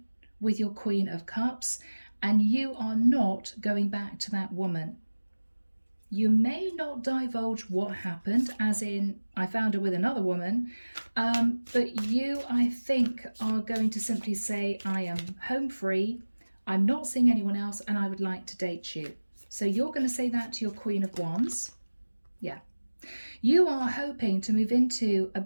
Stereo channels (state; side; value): inverted; both; correlation -1.00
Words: with your Queen of Cups, and you are not going back to that woman. You may not divulge what happened, as in, I found her with another woman, but you, I think, are going to simply say, I am home free, I'm not seeing anyone else and I would like to date you. So you're going to say that to your Queen of Wands. Yeah. You are hoping to move into a